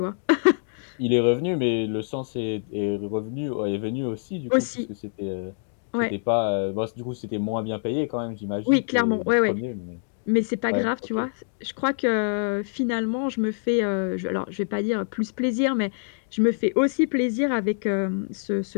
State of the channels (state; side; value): silent; right; digital silence